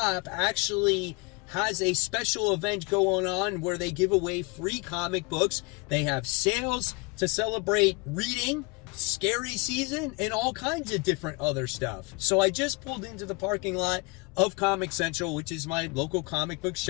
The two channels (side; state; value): right; quieter; 27.8 dB